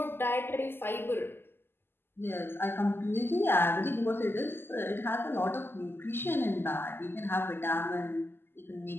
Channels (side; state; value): right; late; 0.11 ms